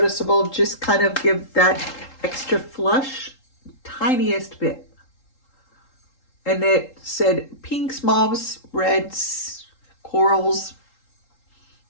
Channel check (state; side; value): late; right; 3.8 ms